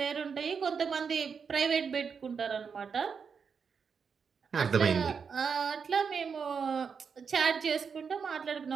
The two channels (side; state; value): left; quieter; 6.1 dB